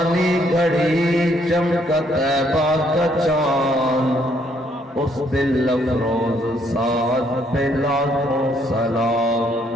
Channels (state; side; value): normal; both; correlation 0.69